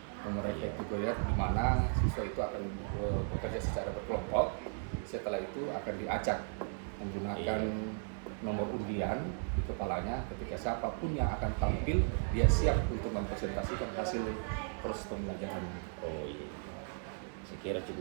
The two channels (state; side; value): silent; left; 54 dB below the other